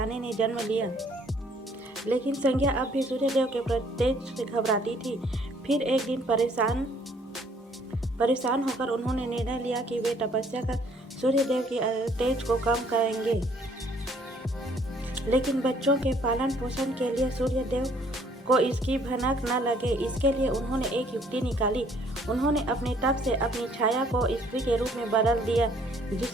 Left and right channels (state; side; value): normal; both; correlation 0.62